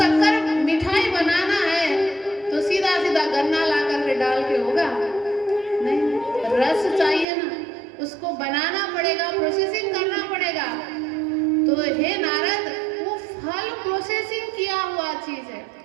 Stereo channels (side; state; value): left; drops out; at 7.2 s